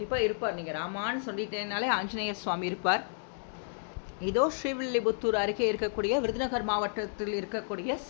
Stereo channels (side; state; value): right; silent; digital silence